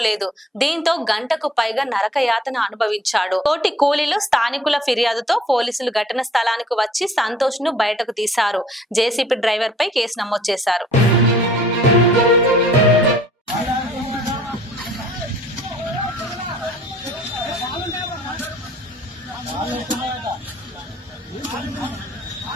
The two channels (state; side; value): normal; both; correlation 0.56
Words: దీంతో గంటకు పైగా నరకయాతన అనుభవించాడు. తోటి కూలీలు స్థానికుల ఫిర్యాదుతో పోలీసులు ఘటన స్థలానికి వచ్చి సంతోష్ ను బయటకు తీశారు. జేసీబీ డ్రైవర్ పై కేసు నమోదు చేశారు.